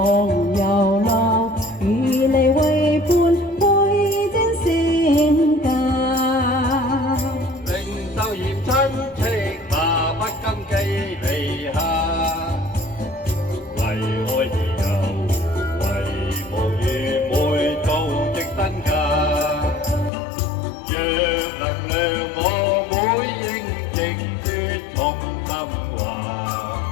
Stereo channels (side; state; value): right; drops out; at 20.1 s